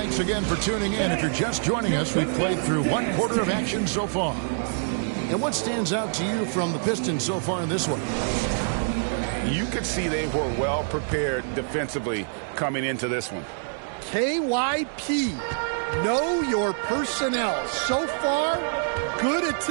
again for tuning in. If you're just joining us, we've played through one quarter of action so far. And what stands out to you from the Pistons so far in this one? You could see they were well prepared defensively coming into this one. KYP, know your personnel. So far, good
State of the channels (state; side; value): silent; left; digital silence